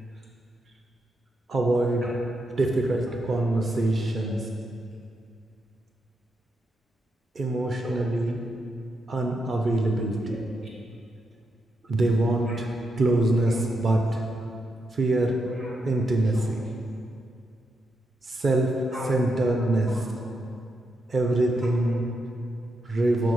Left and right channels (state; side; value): normal; both; correlation 0.83